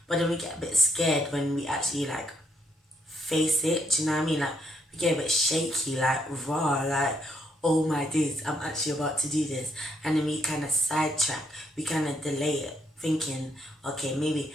But then we get a bit scared when we actually like face it, do you know what I mean? Like we get a bit shaky, like raw, like, oh my days, I'm actually about to do this. And then we kind of sidetrack, we kind of delay it, thinking, okay,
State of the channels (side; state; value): both; normal; correlation 0.73